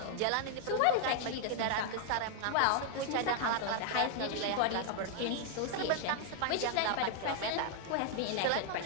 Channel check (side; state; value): both; different; correlation 0.00